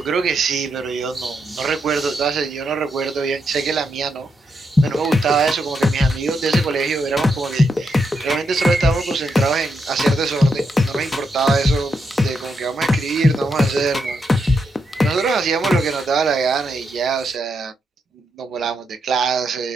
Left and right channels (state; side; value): normal; both; correlation 0.82